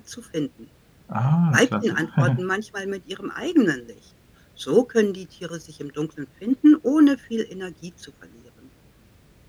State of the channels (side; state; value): both; identical; correlation 1.00